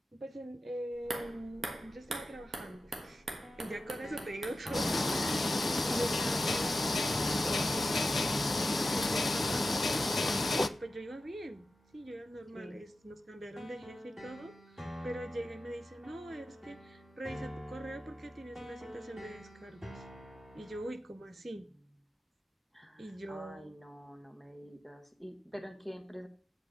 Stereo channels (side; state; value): both; normal; correlation 0.92